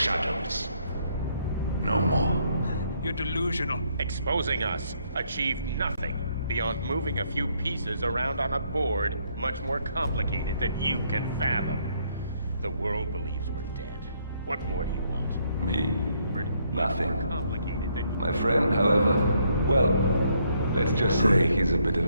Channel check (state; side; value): inverted; both; correlation -0.71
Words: No more. You're delusional. Exposing us achieved nothing beyond moving a few pieces around on a board much more complicated than you can fathom. The world believes we're dead. What more do you want? Me? Nothing. More complicated than My friend, however, well, let's just say he's a bit